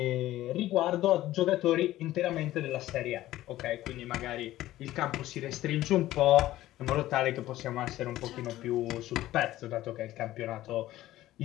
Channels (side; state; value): right; quieter; 15.1 dB